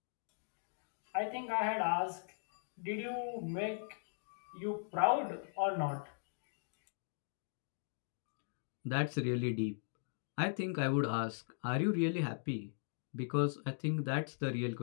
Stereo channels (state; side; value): silent; right; digital silence